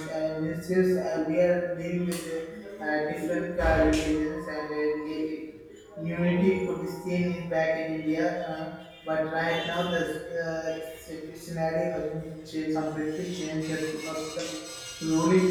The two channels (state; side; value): identical; both; correlation 1.00